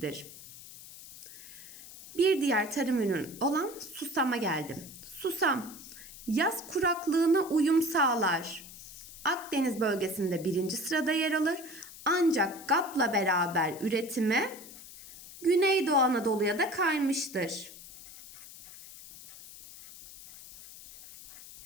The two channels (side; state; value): left; noise; hiss, 16 dB below the sound